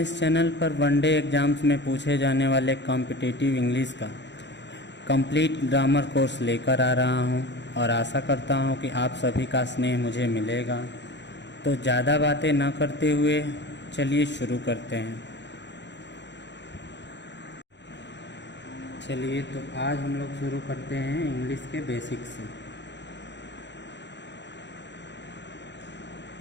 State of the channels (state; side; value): late; right; 0.52 ms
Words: इस चैनल पर वनडे एग्ज़ाम्स में पूछे जाने वाले कॉम्पिटिटिव इंग्लिश का कंप्लीट ग्रामर कोर्स लेकर आ रहा हूं और आशा करता हूं कि आप सभी का स्नेह मुझे मिलेगा। तो ज़्यादा बातें न करते हुए चलिए शुरू करते हैं। चलिए तो आज हम लोग शुरू करते हैं इंग्लिश के बेसिक्स से।